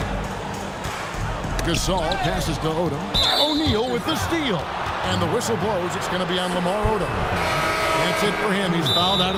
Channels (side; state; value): both; identical; correlation 1.00